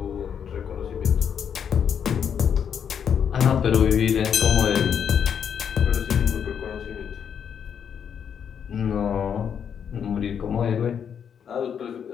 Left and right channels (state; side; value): quieter; right; 7.8 dB